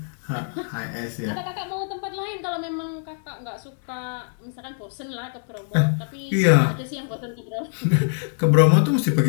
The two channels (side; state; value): right; silent; digital silence